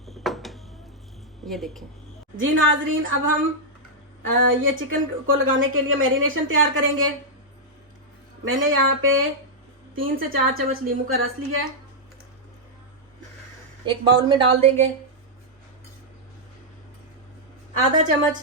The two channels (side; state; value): both; normal; correlation -0.06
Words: ये देखें जी नाजरीन, अब हम ये चिकन को लगाने के लिए मैरिनेशन तैयार करेंगे। मैंने यहाँ पे 3 से 4 चम्मच नींबू का रस लिया है, एक बाउल में डाल देंगे। आधा चम्मच